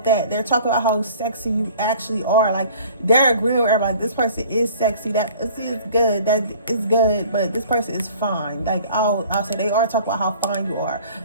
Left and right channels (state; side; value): inverted; both; correlation -0.48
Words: that. They're talking about how sexy you actually are. Like, they're agreeing with everybody, this person is sexy, that is good, that is good, but this person is fine. Like, I'll say they are talking about how fine you are,